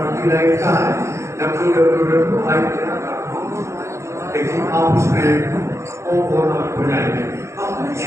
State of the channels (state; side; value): late; left; 0.14 ms